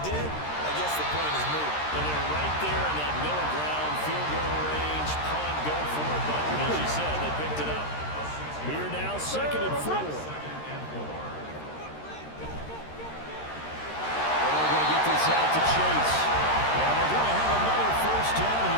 did, I guess the point is moot. And they're right there in that middle ground, field goal range, punt, go for it button. As you said, they picked it up. Here now, 2nd and 4. Out to Chase. And they're going to have another first down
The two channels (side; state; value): right; late; 13 ms